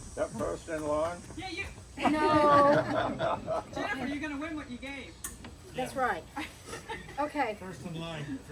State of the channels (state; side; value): identical; both; correlation 1.00